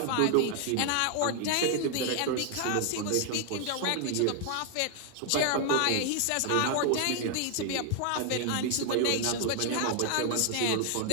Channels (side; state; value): both; different; correlation 0.00